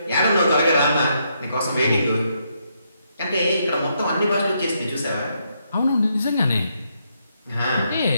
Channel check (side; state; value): both; inverted; correlation -0.77